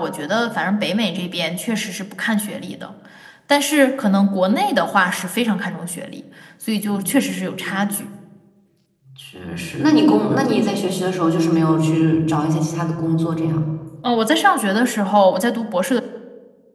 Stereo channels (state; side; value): identical; both; correlation 1.00